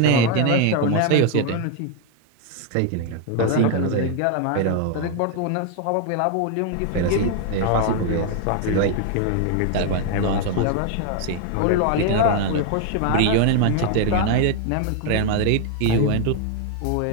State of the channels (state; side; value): different; both; correlation 0.01